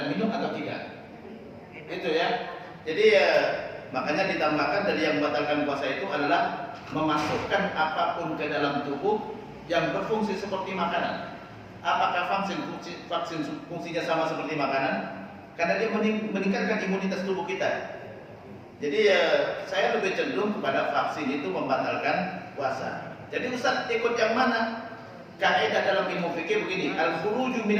minum atau tidak? Itu ya. Jadi makanya ditambahkan dari yang membatalkan puasa itu adalah memasukkan apapun ke dalam tubuh yang berfungsi seperti makanan. Apakah vaksin fungsinya sama seperti makanan? Karena dia meningkatkan imunitas tubuh kita. Jadi saya lebih cenderung kepada vaksin itu membatalkan puasa. Jadi Ustaz ikut yang mana? Kaidah dalam ilmu fikih begini, al-khuruju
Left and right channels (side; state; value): both; identical; correlation 1.00